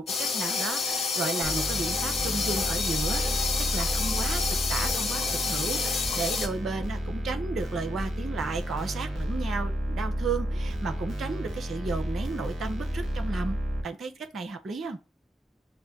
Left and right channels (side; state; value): both; normal; correlation 0.77